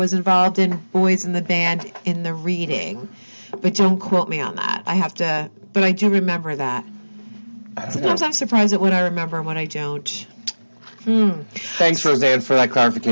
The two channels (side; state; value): both; inverted; correlation -1.00